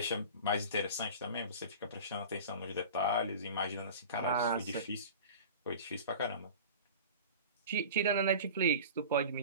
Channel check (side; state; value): both; inverted; correlation -0.37